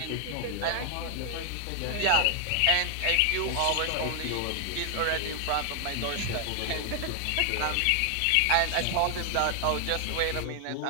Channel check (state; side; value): different; both; correlation 0.00